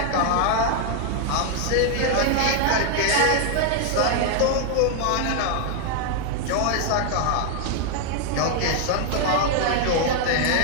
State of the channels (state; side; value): different; both; correlation 0.00